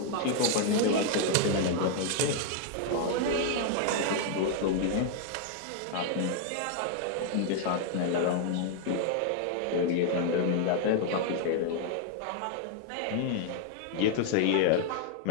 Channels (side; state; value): both; different; correlation 0.00